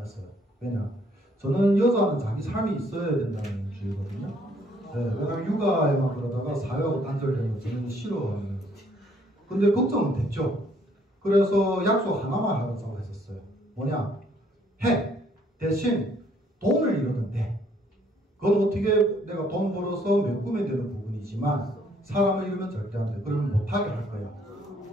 왜냐? 저는 여자는 자기 삶이 있어야 된다는 주의거든요. 네, 왜냐면 육아에만 그러다가 사회하고 단절되는 거 저는 싫어하는. 근데 걱정은 됐죠. 그래서 약속 하나만 하자고 했었어요. 뭐냐? 대신 돈을 잃었는데 그건 어떻게 내가 돈 벌어서 메꾸면 되는 부분이지만 사람을 잃으면 절대 안 돼. 그러면 못하게 할 거야.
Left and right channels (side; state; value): both; normal; correlation 0.65